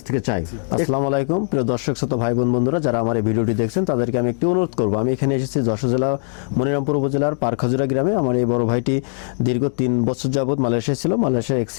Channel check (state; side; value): silent; right; digital silence